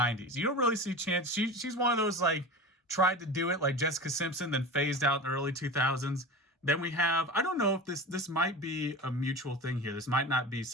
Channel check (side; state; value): both; normal; correlation 0.30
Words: You don't really see Chansey. She's one of those like tried to do it like Jessica Simpson, then phased out in the early 2000s. Then we have, I don't know if this might be a mutual thing here. This might not be